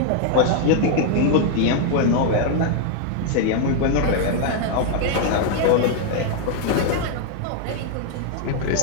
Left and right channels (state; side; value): different; both; correlation 0.00